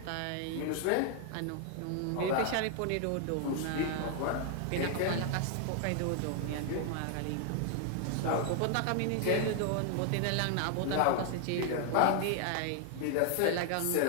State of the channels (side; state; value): both; different; correlation 0.00